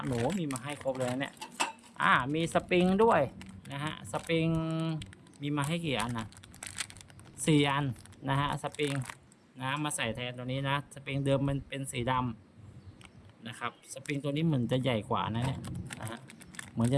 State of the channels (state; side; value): identical; both; correlation 1.00